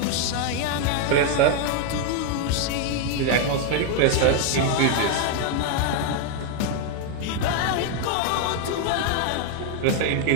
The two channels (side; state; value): both; different; correlation 0.01